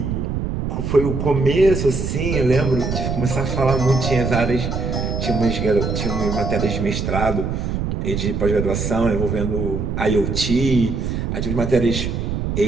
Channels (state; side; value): noise; right; rumble, 2 dB below the sound